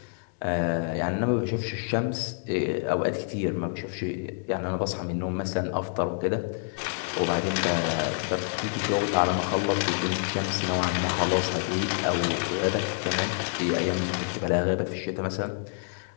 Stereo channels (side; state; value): right; silent; 60 dB below the other